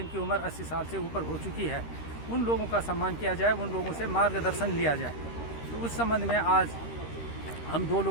उम्र 80 साल से ऊपर हो चुकी है, उन लोगों का सम्मान किया जाए, उन लोगों से मार्गदर्शन लिया जाए। तो उस संबंध में आज हम दो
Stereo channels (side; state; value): right; late; 13 ms